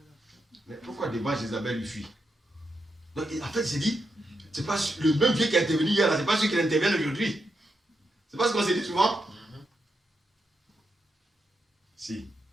Mais pourquoi devant Jézabel lui fuit? Donc, en fait, il s'est dit, c'est pas le même Dieu qui est intervenu hier, c'est pas celui qui intervient aujourd'hui. C'est pas ce qu'on s'est dit souvent? Si,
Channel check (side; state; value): both; normal; correlation 0.84